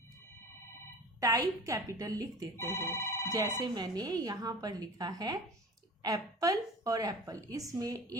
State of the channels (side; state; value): both; normal; correlation 0.37